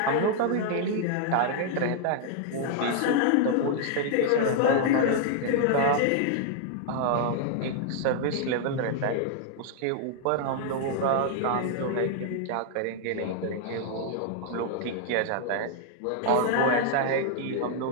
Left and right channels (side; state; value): both; different; correlation -0.01